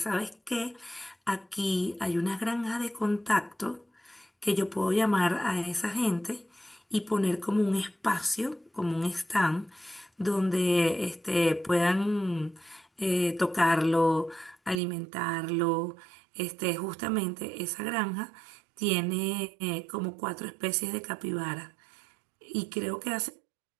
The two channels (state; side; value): drops out; left; at 14.8 s